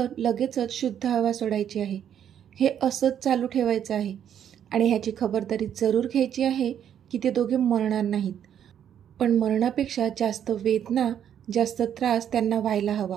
लगेचच शुद्ध हवा सोडायची आहे. हे असंच चालू ठेवायचं आहे आणि ह्याची खबरदारी जरूर घ्यायची आहे की ते दोघे मरणार नाहीत. पण मरणापेक्षा जास्त वेदना, जास्त त्रास त्यांना व्हायला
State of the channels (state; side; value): quieter; left; 9.4 dB